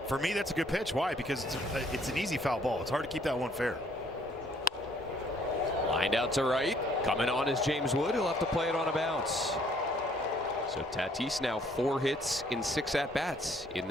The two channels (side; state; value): both; normal; correlation 0.63